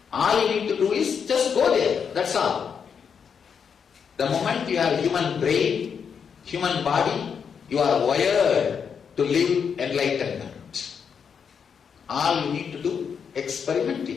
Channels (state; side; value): quieter; right; 6.8 dB